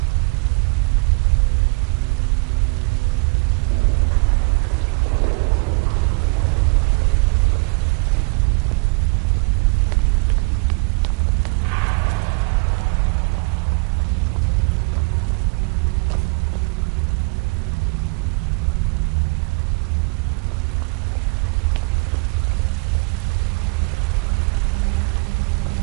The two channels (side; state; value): left; quieter; 31.6 dB